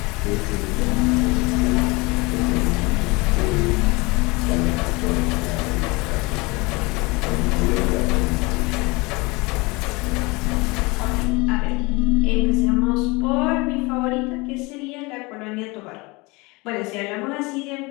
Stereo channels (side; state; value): right; quieter; 25.3 dB